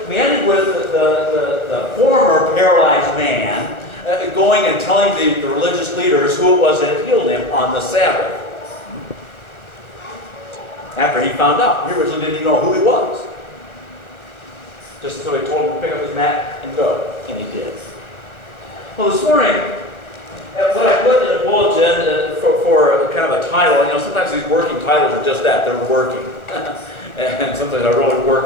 We ended with the former paralyzed man going and telling the religious leaders who it was that had healed him on the Sabbath. After he found out. He originally didn't even know who he was. Just until he told him to pick up his mat and go. And he did. Well, this morning, what I put in the bulletin for kind of a title, sometimes these working titles are just that. They're working. And sometimes I really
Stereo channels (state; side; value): late; right; 1.3 ms